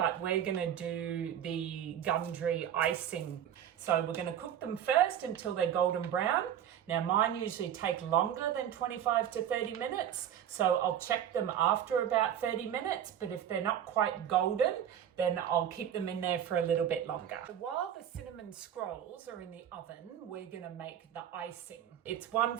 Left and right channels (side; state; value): left; quieter; 9.8 dB